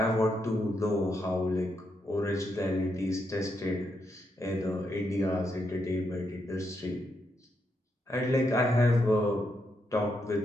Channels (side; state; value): both; normal; correlation 0.80